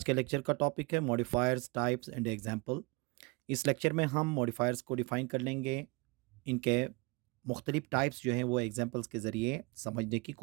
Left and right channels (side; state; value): left; quieter; 26.8 dB